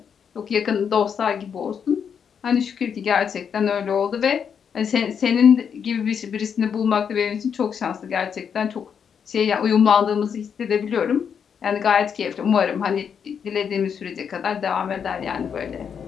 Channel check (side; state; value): right; quieter; 7.3 dB